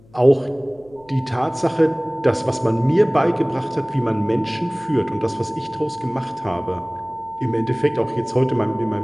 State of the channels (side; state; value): left; noise; hum, 27 dB below the sound